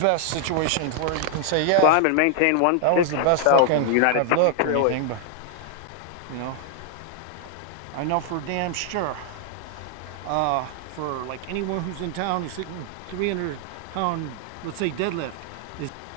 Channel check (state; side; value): different; both; correlation 0.00